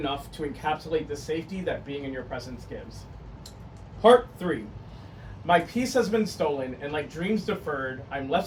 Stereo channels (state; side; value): identical; both; correlation 1.00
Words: to encapsulate the safety that being in your presence gives. Part 3. My peace has been stolen, and like dreams deferred, I'm